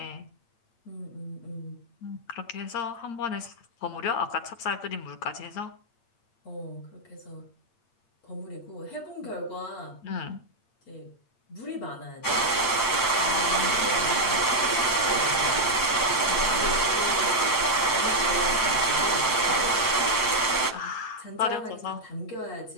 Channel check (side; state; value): right; late; 8.7 ms